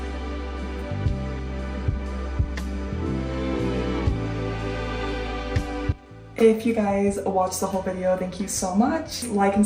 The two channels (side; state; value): both; identical; correlation 1.00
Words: If you guys watched the whole video, thank you so much. Like and